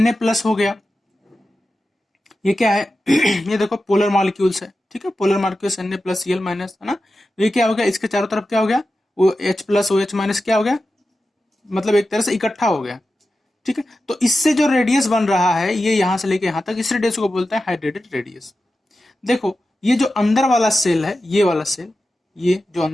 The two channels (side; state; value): both; normal; correlation 0.92